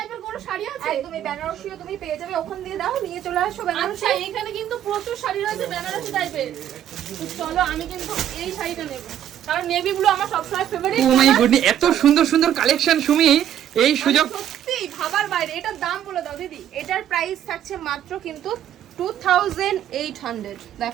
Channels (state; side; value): quieter; left; 10.6 dB